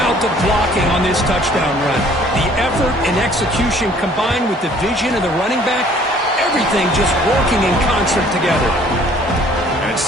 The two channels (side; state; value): both; normal; correlation 0.57